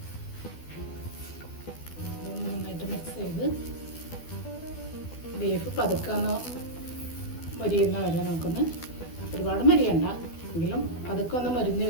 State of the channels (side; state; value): right; late; 12 ms